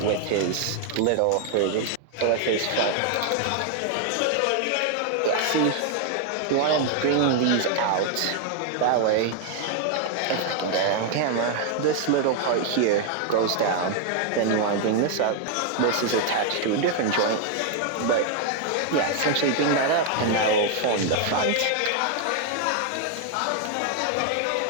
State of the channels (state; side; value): different; both; correlation 0.00